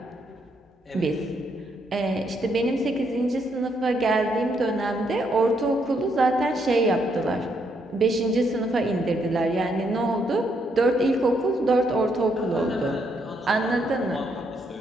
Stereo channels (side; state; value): both; normal; correlation 0.75